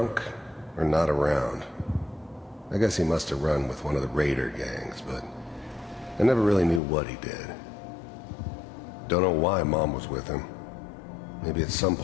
or not around. I guess he must have run with one of the raider gangs, but I never really knew what he did. Don't know why Mom was with him. Maybe at some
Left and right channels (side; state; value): right; drops out; at 6.8 s